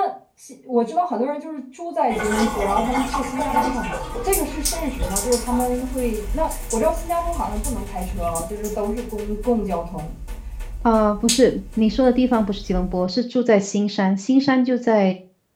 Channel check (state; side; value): identical; both; correlation 1.00